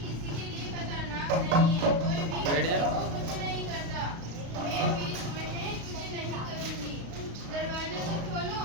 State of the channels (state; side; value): late; left; 35 ms